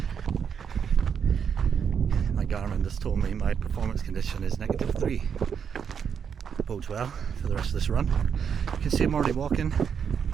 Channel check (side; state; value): left; quieter; 7.2 dB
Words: My Garmin just told me my performance condition is -3. Bodes well for the rest of this run. You can see I'm already walking.